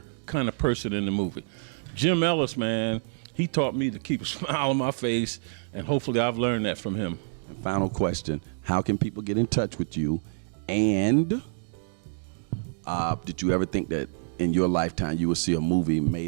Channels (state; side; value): silent; left; digital silence